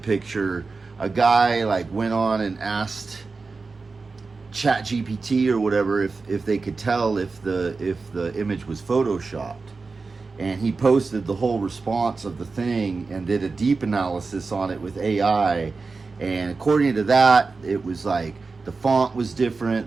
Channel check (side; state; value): left; quieter; 4.2 dB